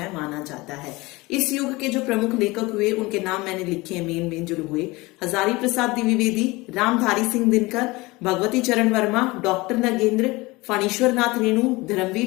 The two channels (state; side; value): quieter; right; 22.4 dB